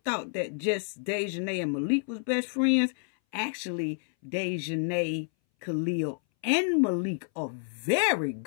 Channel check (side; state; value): right; silent; 59 dB below the other